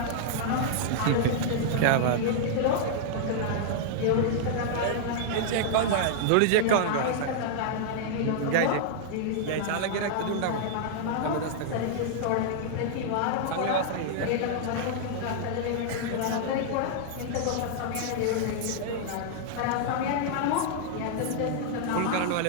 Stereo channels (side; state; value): both; different; correlation -0.01